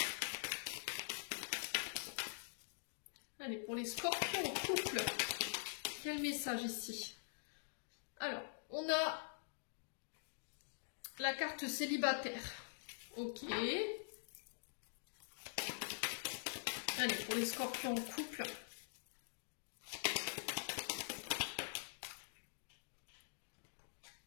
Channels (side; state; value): right; silent; digital silence